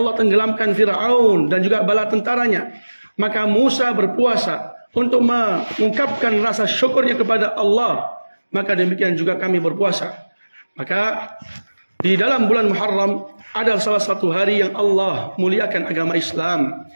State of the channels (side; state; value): both; inverted; correlation -1.00